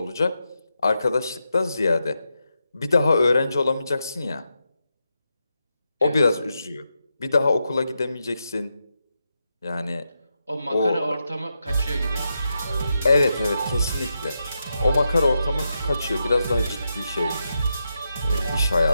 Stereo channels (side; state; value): both; inverted; correlation -0.86